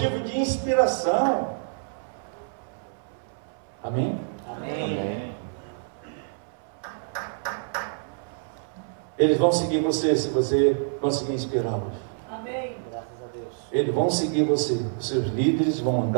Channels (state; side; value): silent; left; 60 dB below the other